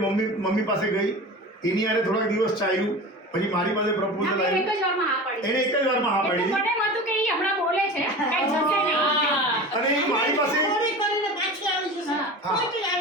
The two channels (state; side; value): normal; both; correlation 0.33